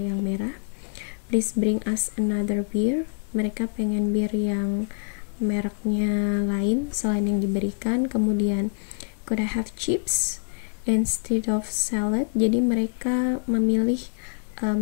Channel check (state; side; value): silent; right; 61 dB below the other